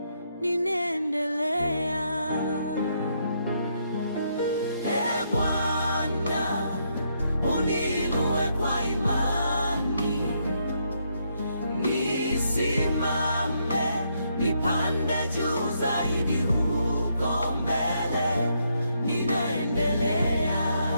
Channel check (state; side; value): inverted; both; correlation -0.76